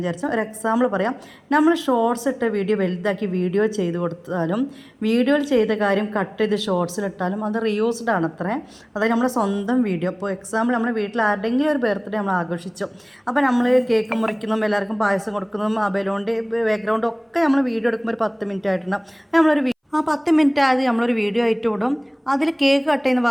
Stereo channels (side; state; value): both; identical; correlation 1.00